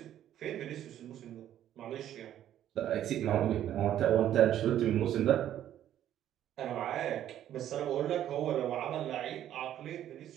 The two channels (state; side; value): quieter; left; 11.4 dB